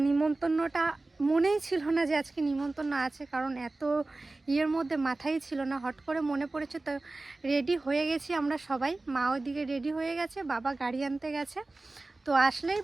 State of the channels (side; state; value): left; quieter; 3.1 dB